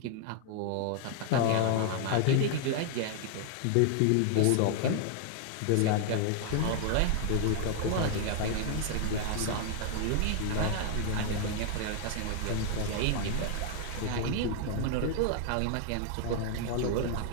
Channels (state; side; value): different; both; correlation 0.00